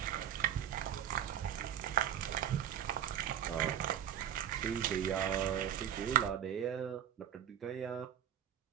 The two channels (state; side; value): quieter; left; 9.9 dB